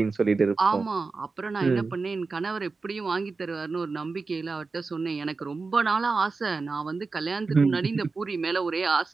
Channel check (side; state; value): left; quieter; 4.1 dB